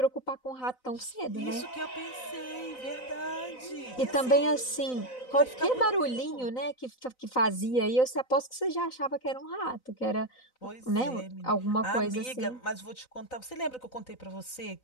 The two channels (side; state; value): right; late; 3.9 ms